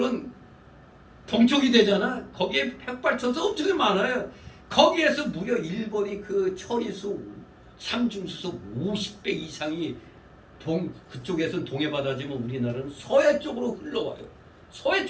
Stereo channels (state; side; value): identical; both; correlation 1.00